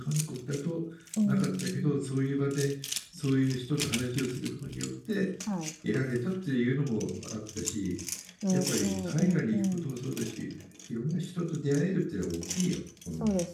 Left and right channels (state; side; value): identical; both; correlation 1.00